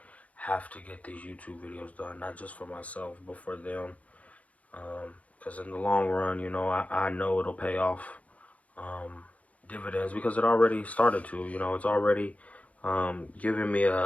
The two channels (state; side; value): late; right; 0.068 ms